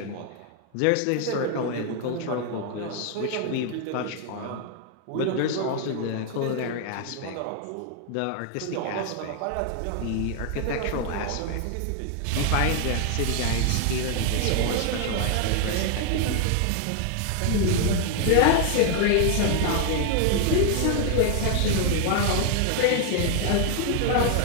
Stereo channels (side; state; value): both; different; correlation 0.00